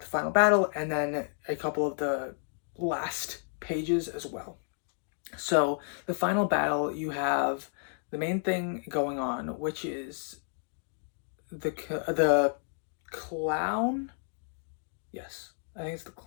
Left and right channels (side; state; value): right; silent; 57 dB below the other